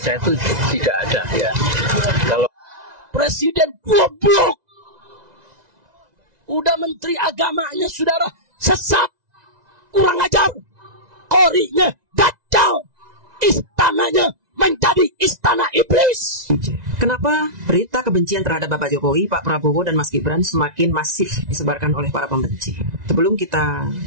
itu tidak ada ya. Kalau Presiden goblok, udah menteri agamanya saudara sesat, kurang ajar, korinya dajjal, istananya menjadi istana iblis. Kenapa berita kebencian terhadap Bapak Jokowi, Pak Prabowo, dan Mas Gibran semakin masif disebarkan oleh para pembenci? Sebelum kita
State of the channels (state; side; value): late; left; 1.9 ms